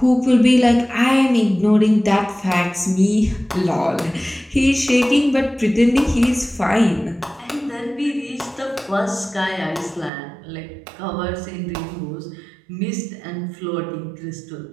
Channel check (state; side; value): drops out; left; at 10.1 s